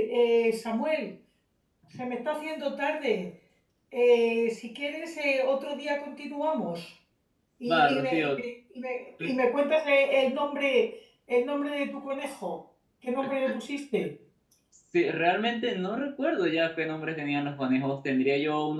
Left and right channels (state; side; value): identical; both; correlation 1.00